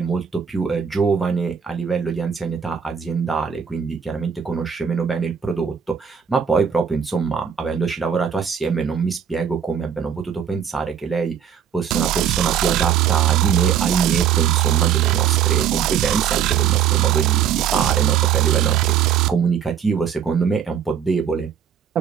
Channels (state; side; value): quieter; left; 8.0 dB